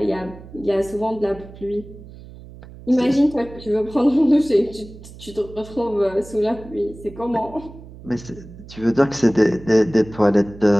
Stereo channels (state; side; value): noise; right; hum, 17 dB below the sound